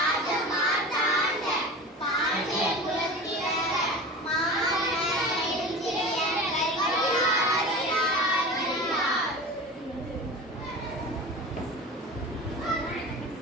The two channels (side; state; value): both; normal; correlation 0.33